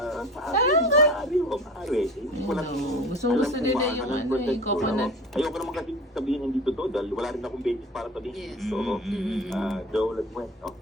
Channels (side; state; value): both; normal; correlation 0.38